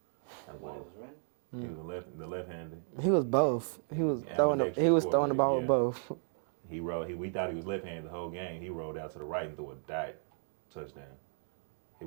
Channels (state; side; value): silent; left; digital silence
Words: That boy. He was the left-handed. He was both. He was throwing the ball with both. We thought he was left-handed the whole game. He rolled out to the right and threw a dot touchdown. He